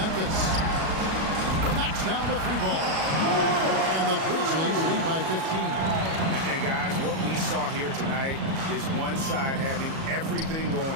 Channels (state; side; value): late; left; 37 ms